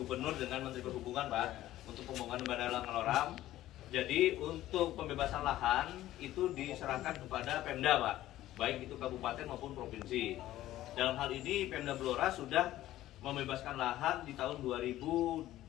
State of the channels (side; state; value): right; quieter; 14.5 dB